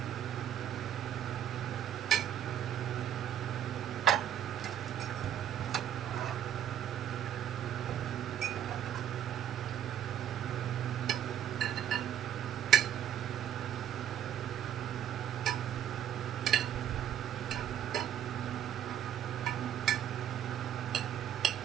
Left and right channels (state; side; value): quieter; left; 10.2 dB